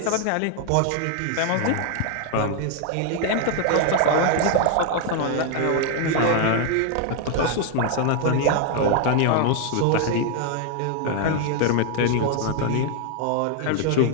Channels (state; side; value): different; both; correlation 0.00